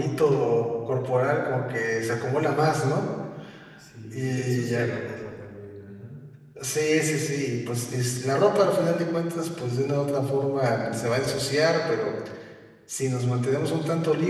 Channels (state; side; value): identical; both; correlation 1.00